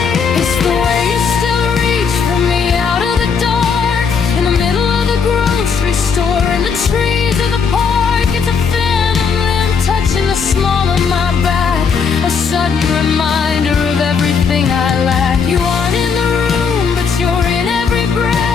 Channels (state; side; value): quieter; right; 5.9 dB